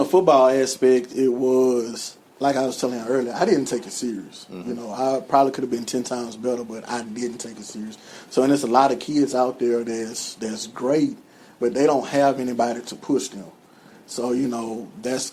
football aspect, it was like I was telling you earlier. I didn't take it serious. I probably could have been 10 times better, but I didn't take it serious. So, and there's a lot of kids out there that's great, but they don't have anybody to push them. So, that's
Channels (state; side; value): identical; both; correlation 1.00